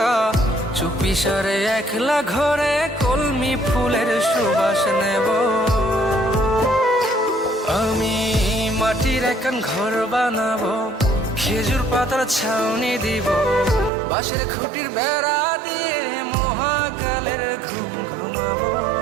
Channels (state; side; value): drops out; left; at 13.9 s